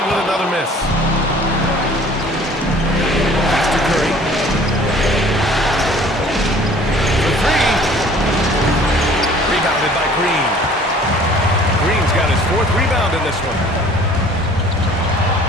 with another miss. Pass to Curry. For 3. Rebounded by Green. Green's got his 4th rebound in this one.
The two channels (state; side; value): normal; both; correlation 0.51